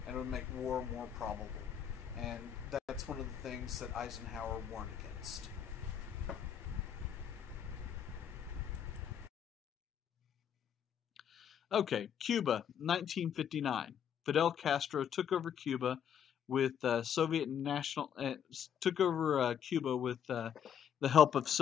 and it would make war more probable. And that's one of the things that Eisenhower warned against. Okay, Cuba, 1959. Fidel Castro took over Cuba with Cuba with the help of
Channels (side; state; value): right; quieter; 8.6 dB